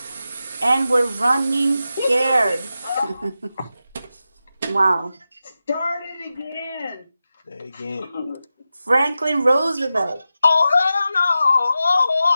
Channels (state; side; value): inverted; both; correlation -0.92